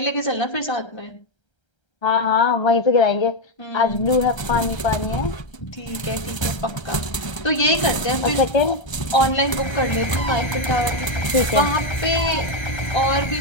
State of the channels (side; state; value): right; late; 1.3 ms